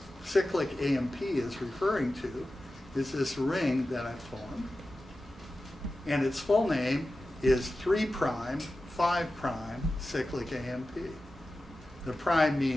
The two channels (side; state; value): both; normal; correlation 0.94